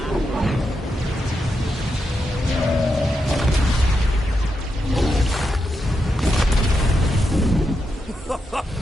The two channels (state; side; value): normal; both; correlation 0.85